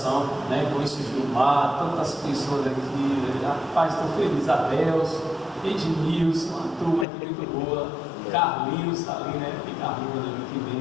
né? Com esse Gilmar, tantas pessoas aqui, rapaz, estou feliz, Adeus, Edmilson, uma turma aqui muito boa, Carlinhos está ali, né? Tem Carlinhos ali, que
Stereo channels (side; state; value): right; drops out; at 7.1 s